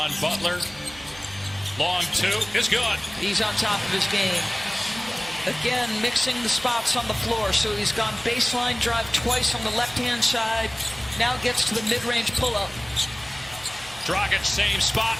Butler. Long 2 is good. He's on top of his game. Again, mixing the spots on the floor. So he's gone baseline drive twice on the left-hand side. Now gets to the mid-range pull-up. Dragic, same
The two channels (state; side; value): noise; right; hum, 21 dB below the sound